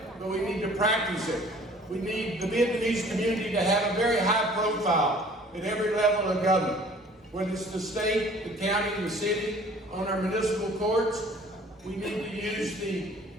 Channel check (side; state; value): both; normal; correlation 0.51